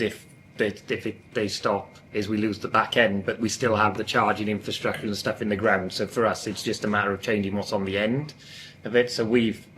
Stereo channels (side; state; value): both; identical; correlation 1.00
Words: if they stop, is we lose the back end, but we still have the charging infrastructure and stuff in the ground. So for us, it's just a matter of changing what's on the end of it. So we've